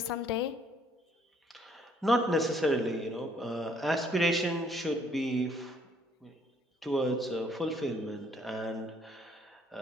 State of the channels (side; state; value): both; normal; correlation 0.64